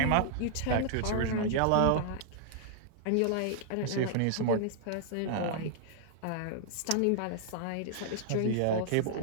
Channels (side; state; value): both; different; correlation -0.01